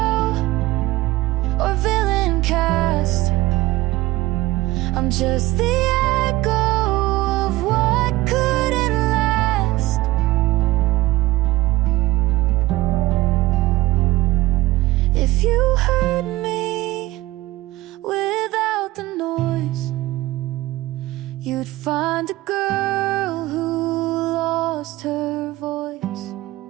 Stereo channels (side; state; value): left; quieter; 18.2 dB